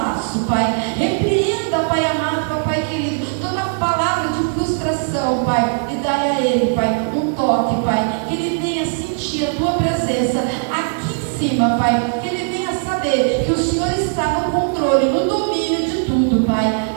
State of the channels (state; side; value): silent; left; 56 dB below the other